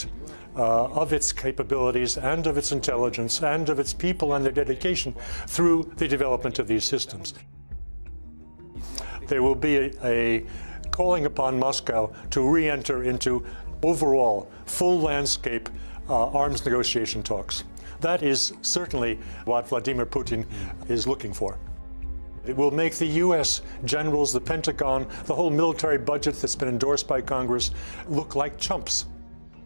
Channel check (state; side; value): inverted; both; correlation -1.00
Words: of its capabilities and of its intelligence and of its people and their dedication through the development of these systems. There will be a calling upon Moscow to re-enter into overall full landscape arms negotiation talks. That is certainly what Vladimir Putin is looking for. It will make the US generals, the Pentagon, the whole military budget that's been endorsed by Congress look like chumps.